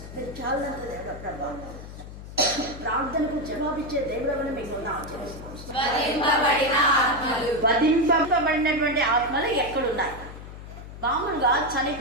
మీరు చాలంత దేవుడు ప్రభా, ప్రార్థనకు జవాబిచ్చే దేవుడని మీకు వధింపబడినటువంటి ఆత్మలు ఎక్కడున్నాయి? మామూలుగా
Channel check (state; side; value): noise; left; hum, 13 dB below the sound